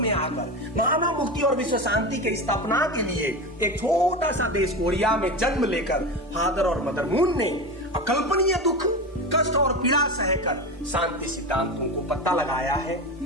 आकर मानव मुक्ति और विश्व शांति की स्थापना के लिए एक छोटा सा देश कोरिया में जन्म लेकर फादर और मदर मून ने अकल्पनीय दुख, कष्ट और पीड़ा सहकर शांति सिद्धांतों को पता लगाया है,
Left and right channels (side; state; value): both; normal; correlation 0.23